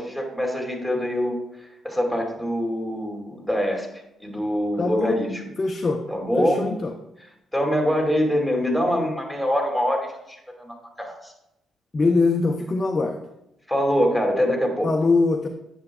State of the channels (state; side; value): normal; both; correlation 0.88